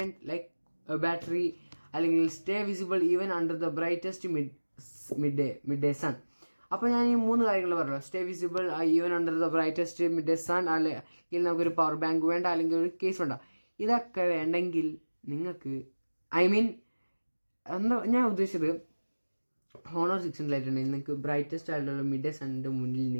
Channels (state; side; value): inverted; both; correlation -1.00